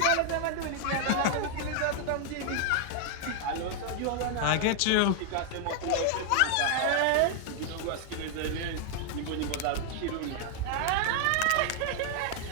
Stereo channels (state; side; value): different; both; correlation 0.00